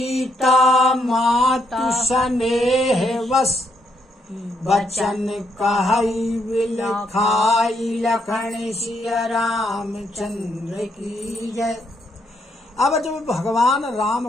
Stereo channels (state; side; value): normal; both; correlation 0.75